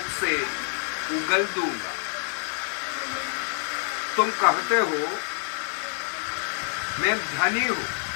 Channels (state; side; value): silent; right; digital silence